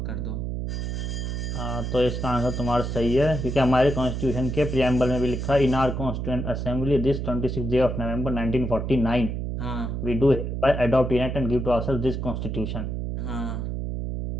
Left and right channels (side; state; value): right; noise; hum, 3 dB below the sound